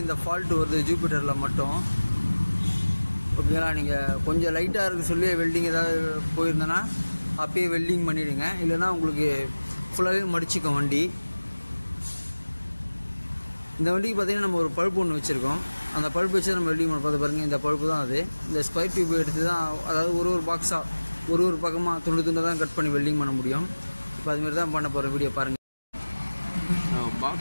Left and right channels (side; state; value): both; inverted; correlation -1.00